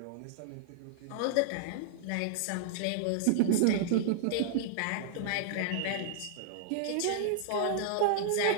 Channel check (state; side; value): different; both; correlation -0.01